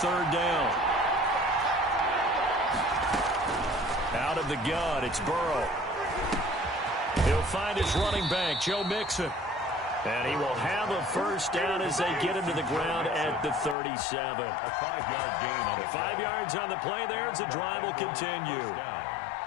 down. Out of the gun, it's Burrow. He'll find his running back, Joe Mixon. And he will have a first down as they get him to the ground at the 37. A 5-yard gain on the 5 yards on the play there as the drive will continue.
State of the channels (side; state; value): right; drops out; at 13.8 s